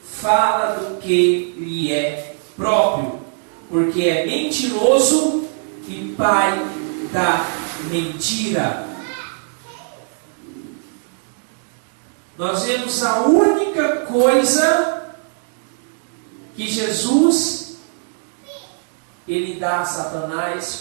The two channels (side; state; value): left; silent; digital silence